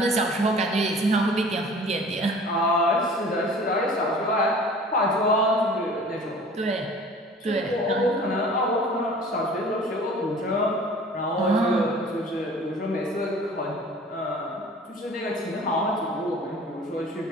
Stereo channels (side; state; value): both; normal; correlation 0.45